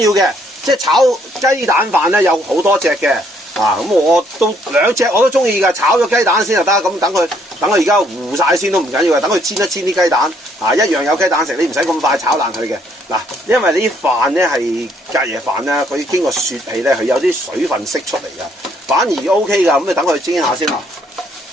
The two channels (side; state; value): both; normal; correlation 0.68